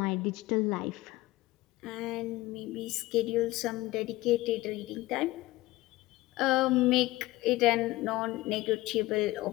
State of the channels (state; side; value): quieter; right; 18.6 dB